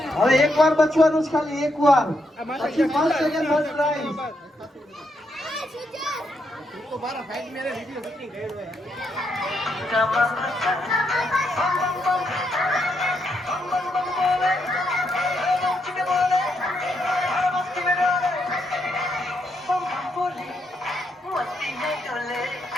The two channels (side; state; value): both; normal; correlation 0.79